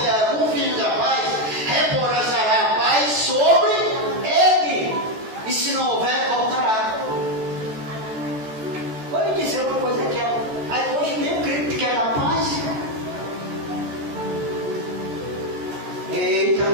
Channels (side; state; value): left; late; 14 ms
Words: algum filho da paz, repousará a paz sobre ele. E se não houver, voltará. Vou lhe dizer uma coisa aqui. Aí hoje nem o crente quer dar paz. Eita,